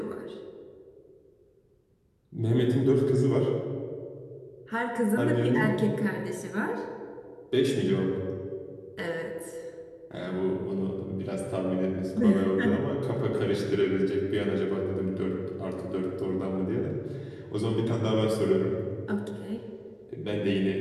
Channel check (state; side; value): identical; both; correlation 1.00